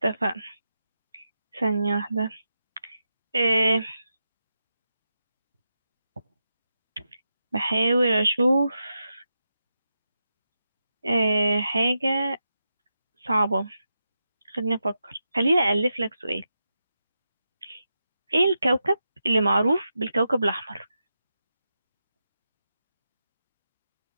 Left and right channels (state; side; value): inverted; both; correlation -0.88